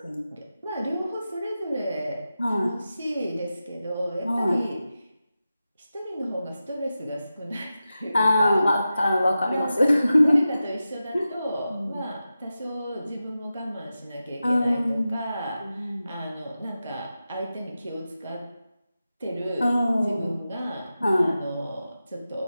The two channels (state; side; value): inverted; both; correlation -0.92